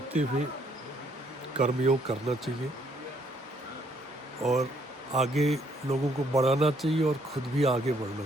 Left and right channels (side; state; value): both; normal; correlation 0.68